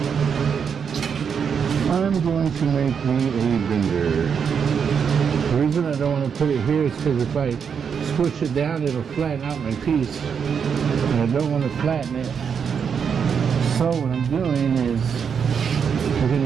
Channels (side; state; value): left; quieter; 6.9 dB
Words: I'm going to make me a bender. The reason I don't want to put it here is because if I squish it down, it'll flatten out my piece. And I don't want to flatten it. So what I'm doing is I'm going